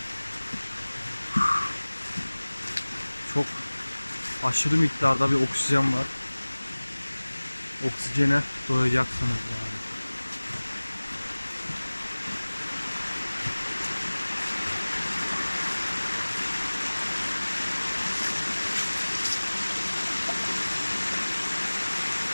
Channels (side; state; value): both; inverted; correlation -1.00